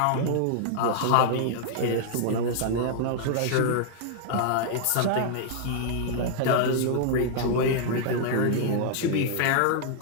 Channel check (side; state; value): both; different; correlation -0.01